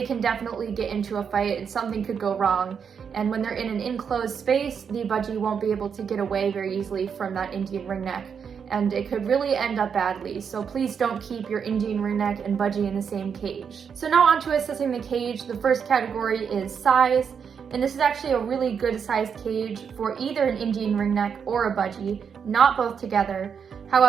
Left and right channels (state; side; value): quieter; left; 6.9 dB